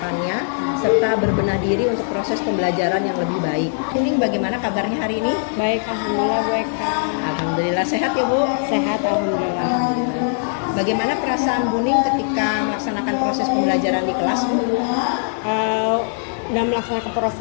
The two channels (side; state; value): right; silent; digital silence